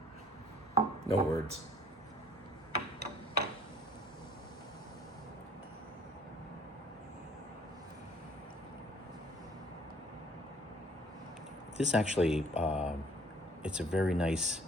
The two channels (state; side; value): normal; both; correlation 0.57